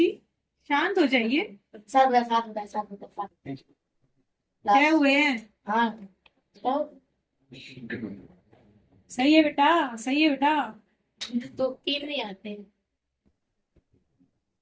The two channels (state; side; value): identical; both; correlation 1.00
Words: शांत हो जाइए। साथ क्या हुए हैं? हाँ तो सही है बेटा, सही है बेटा। तीन नहीं आते,